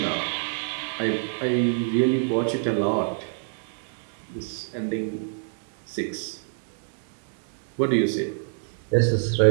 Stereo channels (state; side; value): silent; left; digital silence